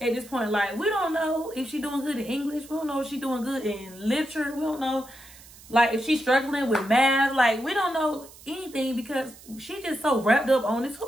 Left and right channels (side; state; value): right; noise; hiss, 21 dB below the sound